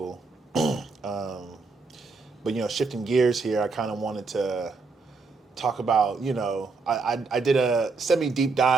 But shifting gears here, I kind of wanted to talk about, I did a semi deep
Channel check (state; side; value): quieter; left; 4.2 dB